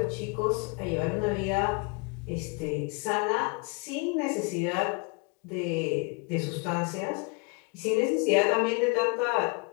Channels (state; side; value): quieter; right; 31.8 dB